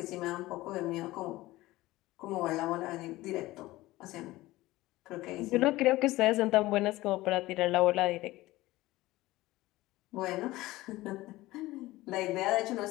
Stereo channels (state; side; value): quieter; right; 18.2 dB